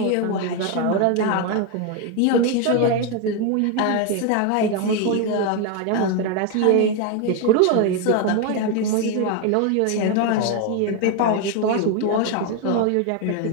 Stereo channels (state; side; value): different; both; correlation 0.01